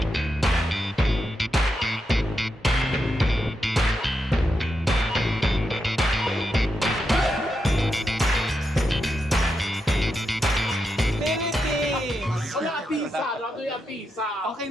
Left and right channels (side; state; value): both; normal; correlation 0.85